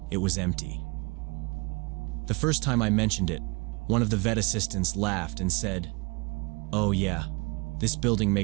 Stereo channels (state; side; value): quieter; left; 28.5 dB